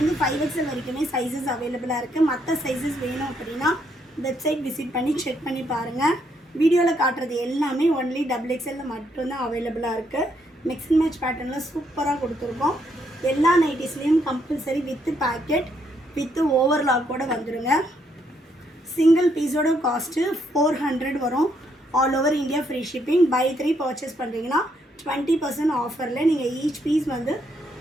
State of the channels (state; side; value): normal; both; correlation 0.74